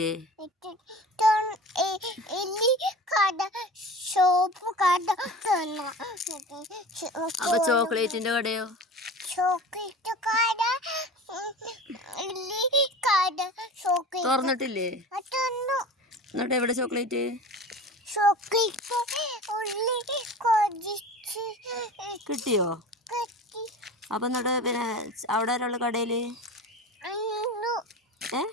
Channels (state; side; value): normal; both; correlation 0.35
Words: അപ്പൊ ചോക്ലേറ്റിന്റെ കടയോ? തുറന്നിട്ടില്ലേ? എന്നിട്ട് എവിടെ ചോക്ലേറ്റ്? കിട്ടിയോ? അപ്പൊ എന്നിട്ട് പിന്നെ അവിടെ ഒരാള് കടയില്